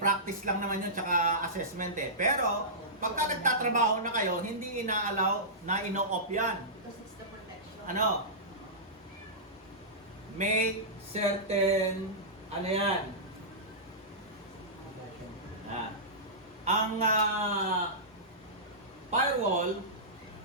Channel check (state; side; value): normal; both; correlation -0.17